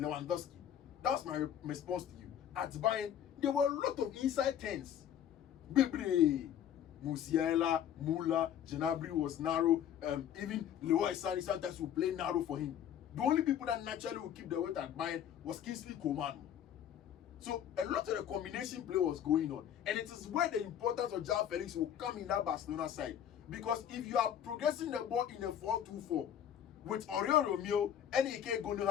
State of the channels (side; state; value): right; quieter; 9.8 dB